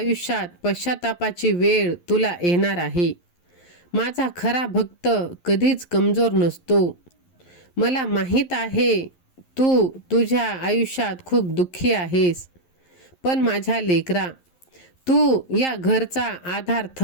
पश्चातापाची वेळ तुला येणार आहे. माझा खरा भक्त कधीच कमजोर नसतो. मला माहीत आहे तू तुझ्या आयुष्यात खूप दुःखी आहेस, पण माझ्या लेकरा, तू या घरचा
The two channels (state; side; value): late; right; 11 ms